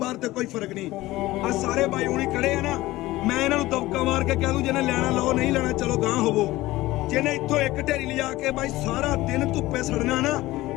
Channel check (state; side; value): quieter; right; 17.8 dB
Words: ਤੇ ਕੋਈ ਫਰਕ ਨਹੀਂ। ਆ ਸਾਰੇ ਬਾਈ ਹੁਣੀ ਖੜੇ ਆ ਨਾ, ਮੈਂ ਇਹਨਾਂ ਨੂੰ ਦਬਕਾ ਮਾਰ ਕੇ ਕਹਿ ਦੂੰ ਜਿਹਨੇ ਲੈਣਾ ਲਓ, ਨਹੀਂ ਲੈਣਾ ਚਲੋ ਗਾਂ ਹੋਵੋ। ਜਿਹਨੇ ਇੱਥੋਂ ਇੱਕ ਢੇਰੀ ਲਿਜਾ ਕੇ ਬਾਈ ਸਾਰਾ ਦਿਨ ਧੁੱਪੇ ਸੜਨਾ ਨਾ,